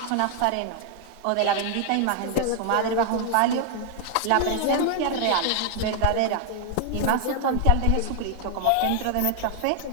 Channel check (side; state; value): both; different; correlation 0.00